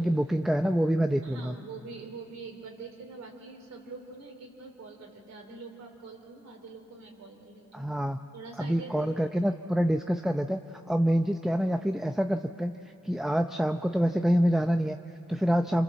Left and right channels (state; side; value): normal; both; correlation 0.95